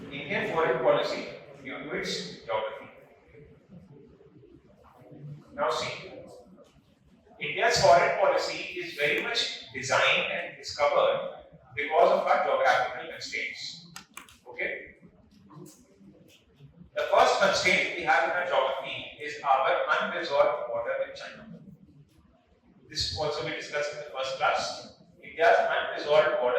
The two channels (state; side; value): identical; both; correlation 1.00